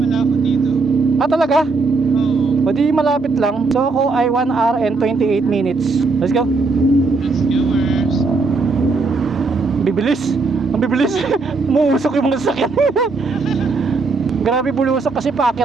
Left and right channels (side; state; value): left; quieter; 4.0 dB